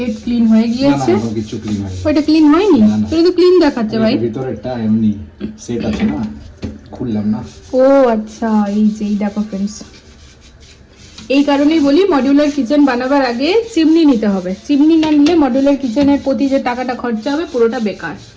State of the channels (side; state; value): both; identical; correlation 1.00